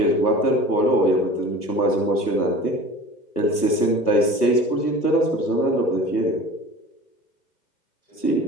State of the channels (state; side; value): late; right; 1.3 ms